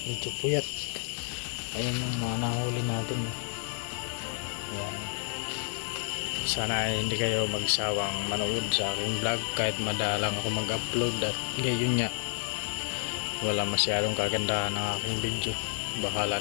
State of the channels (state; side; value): silent; right; 58 dB below the other